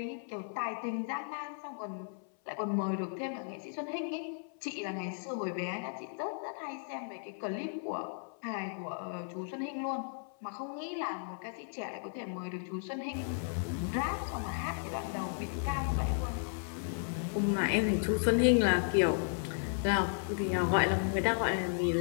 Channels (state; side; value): silent; right; 55 dB below the other